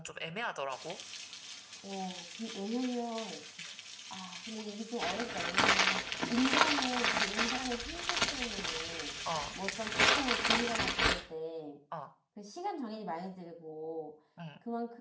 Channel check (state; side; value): identical; both; correlation 1.00